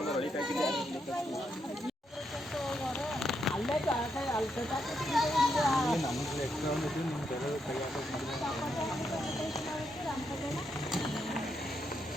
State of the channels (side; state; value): both; normal; correlation 0.80